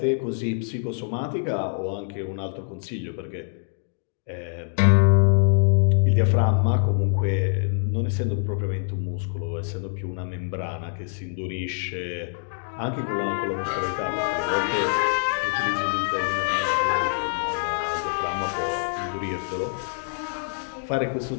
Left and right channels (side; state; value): right; silent; digital silence